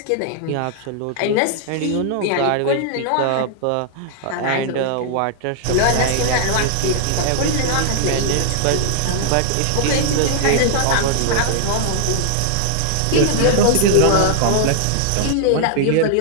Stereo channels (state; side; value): different; both; correlation -0.01